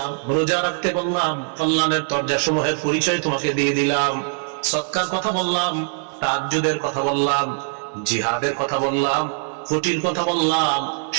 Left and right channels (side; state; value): left; silent; 64 dB below the other